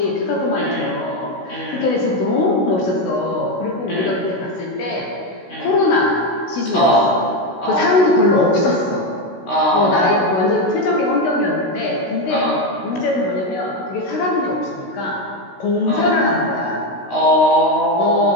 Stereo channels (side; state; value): right; late; 16 ms